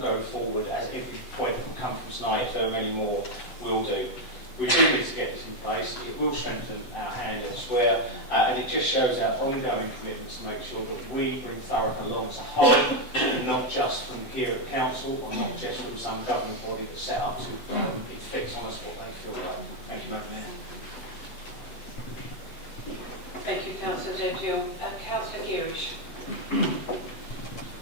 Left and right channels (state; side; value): late; right; 7.8 ms